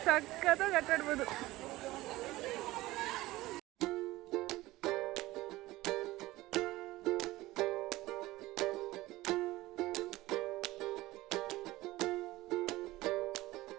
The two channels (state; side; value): quieter; left; 18.2 dB